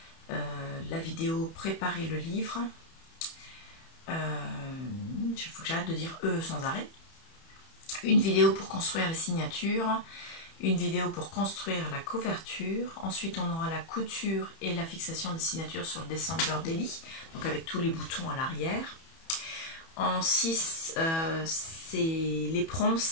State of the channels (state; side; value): late; right; 31 ms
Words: la vidéo préparer le livre. Il faut que j'arrête de dire sans arrêt. Une vidéo pour construire les signatures, une vidéo pour construire la couverture. Ensuite, on aura la couture et la fixation des signatures sur le December Daily, donc avec tous les boutons à l'arrière. En 6, c'est les